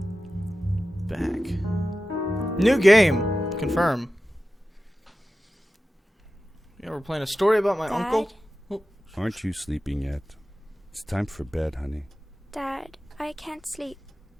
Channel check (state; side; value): normal; both; correlation 0.94